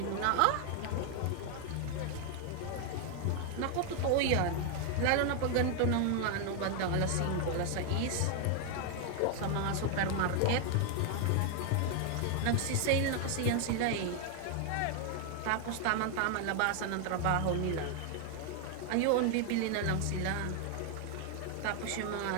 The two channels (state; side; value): different; both; correlation 0.00